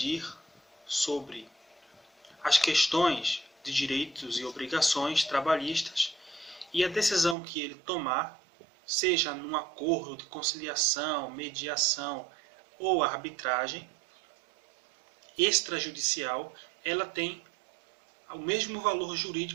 sobre as questões de direitos e obrigações trabalhistas, e a decisão que ele tomar, seja num acordo de conciliação, mediação ou arbitragem extrajudicial, ela tem o mesmo valor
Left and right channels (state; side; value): drops out; left; at 7.4 s